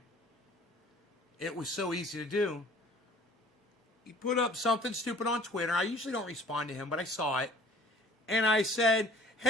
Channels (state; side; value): normal; both; correlation 0.51